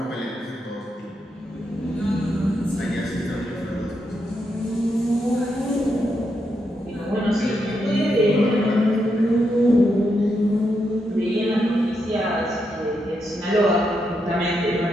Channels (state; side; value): normal; both; correlation 0.82